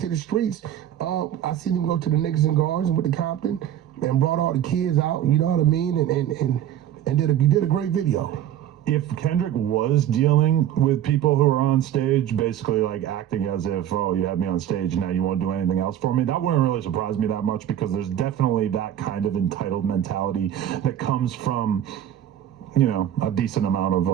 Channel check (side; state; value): left; quieter; 11.1 dB